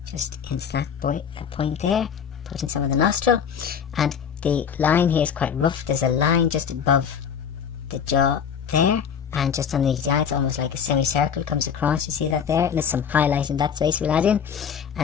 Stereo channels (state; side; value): quieter; right; 7.5 dB